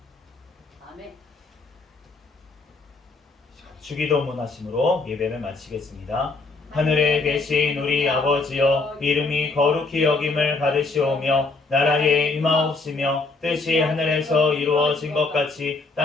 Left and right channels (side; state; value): right; quieter; 3.7 dB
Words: 아멘. 주기도문 하심으로 예배를 마치겠습니다. 하늘에 계신 우리 아버지여 이름이 거룩히 여김을 받으시오며 나라에 임하옵시며 뜻이 하늘에서 이루어진 것 같이